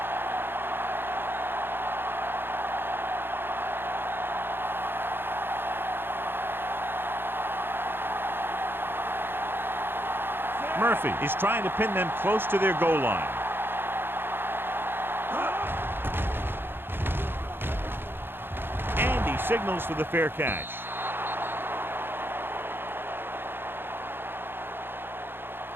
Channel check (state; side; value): late; left; 0.10 ms